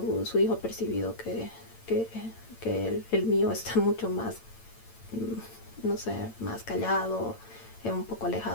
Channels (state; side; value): late; right; 8.9 ms